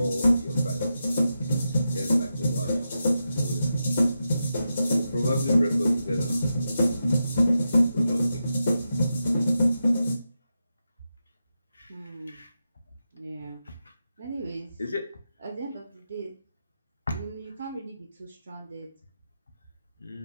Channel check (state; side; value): inverted; both; correlation -0.88